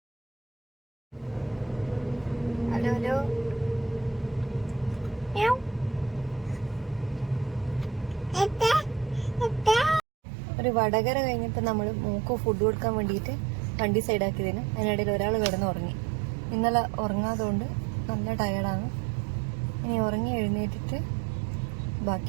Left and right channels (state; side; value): drops out; left; at 10.0 s